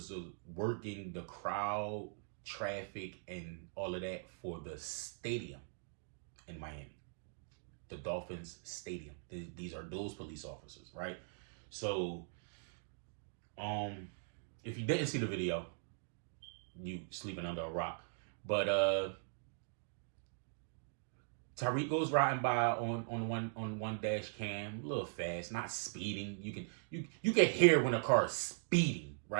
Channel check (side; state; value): left; silent; digital silence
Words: working the crowd, traffic, and all of that for the stadium in Miami, the Dolphins stadium. These are those police officers, right? So if you didn't see the video, you sleeping under a rock. But Tyreek goes riding by on one dash cam, a little fast, not speeding. You can hear when a car is speeding,